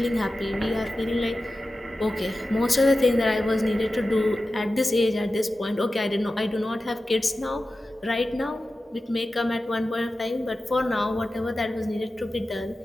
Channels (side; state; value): both; normal; correlation 0.94